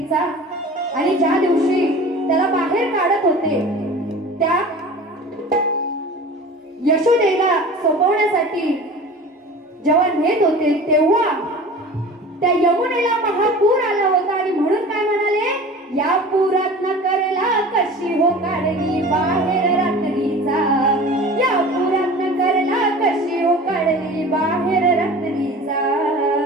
आणि ज्या दिवशी त्याला बाहेर काढत होते त्या यशोदेला सोपवण्यासाठी जेव्हा नेत होते तेव्हा त्या यमुनेला महापूर आला होता. आणि म्हणून काय म्हणाले, या पुरात न करेला कशी हो काढली बाहेर रात्रीचा. या पुरात न करेला कशी हो काढली बाहेर रात्रीचा.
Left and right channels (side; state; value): both; normal; correlation 0.39